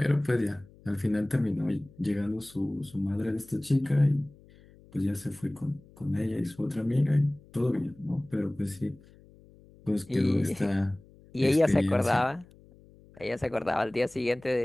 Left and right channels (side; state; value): left; noise; hum, 25 dB below the sound